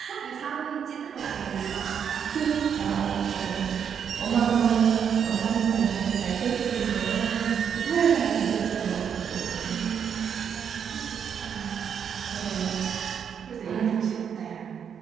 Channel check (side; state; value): left; quieter; 7.7 dB